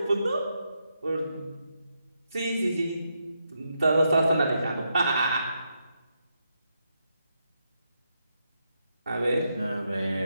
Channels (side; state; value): both; inverted; correlation -0.82